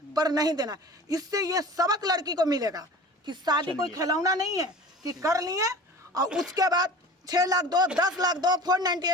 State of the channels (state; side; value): normal; both; correlation 0.39